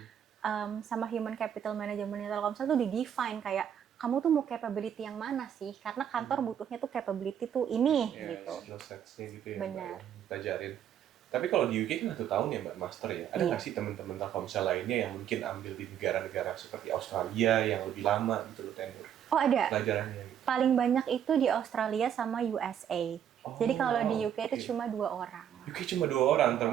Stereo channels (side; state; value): left; quieter; 9.4 dB